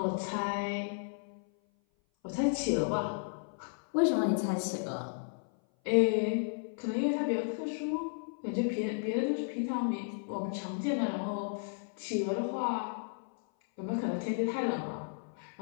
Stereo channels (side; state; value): right; silent; 55 dB below the other